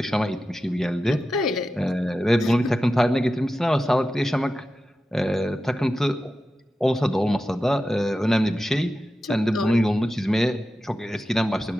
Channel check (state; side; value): normal; both; correlation 0.92